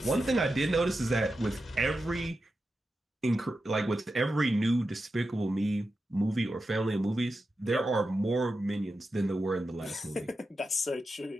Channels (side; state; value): both; normal; correlation 0.90